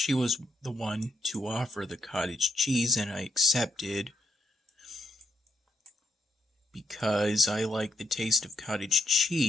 was the one to offer the cottage cheese, and I accepted because I like the taste of cottage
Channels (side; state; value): both; normal; correlation 0.76